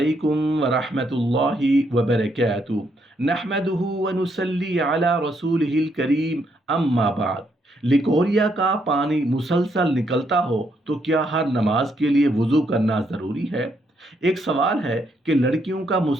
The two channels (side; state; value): both; normal; correlation 0.75